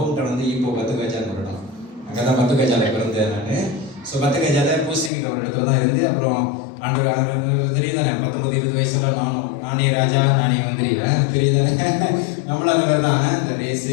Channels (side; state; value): right; drops out; at 5.1 s